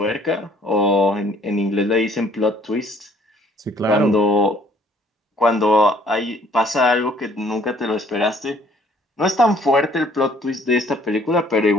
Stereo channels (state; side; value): normal; both; correlation 0.59